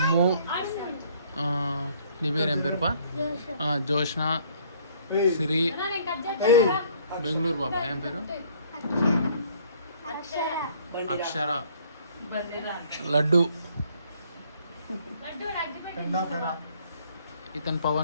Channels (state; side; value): inverted; both; correlation -0.60